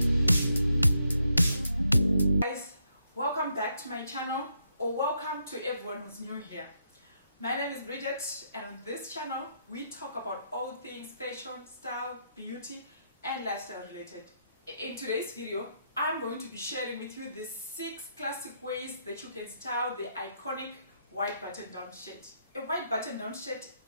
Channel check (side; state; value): both; inverted; correlation -0.78